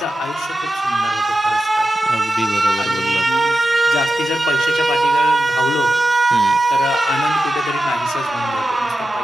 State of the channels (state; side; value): normal; both; correlation 0.92